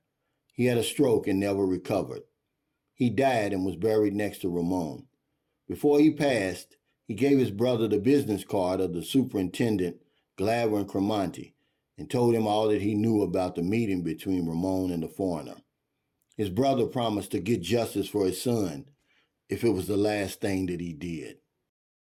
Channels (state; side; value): identical; both; correlation 1.00